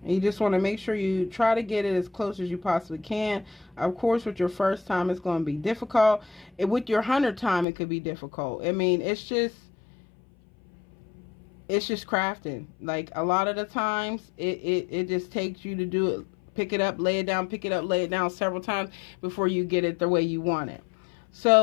And you just want to make sure you try to get it as close as you possibly can. Of course, with your first time, it's going to be difficult. And with your 100th time, it could be difficult. I mean, it's just crafting. Like a lot of the times, it just takes you to do it pick it up, lay it down, pick it up, lay it down several times before you get it the way you want it.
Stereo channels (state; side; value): drops out; right; at 7.7 s